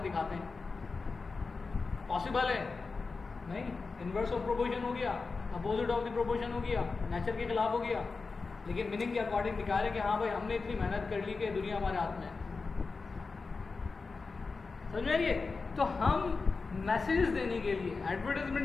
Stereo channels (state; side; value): quieter; right; 4.3 dB